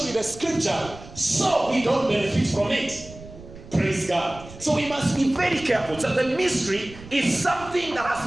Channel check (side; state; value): right; noise; rumble, 17 dB below the sound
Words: with the scripture, so we don't benefit from it. Praise God. So we must be very careful. So the mystery is something that